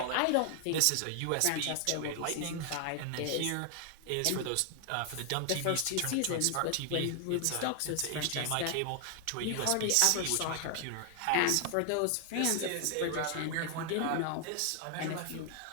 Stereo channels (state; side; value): different; both; correlation 0.00